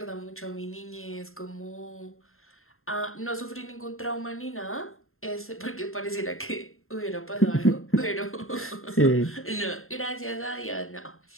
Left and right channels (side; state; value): right; late; 0.61 ms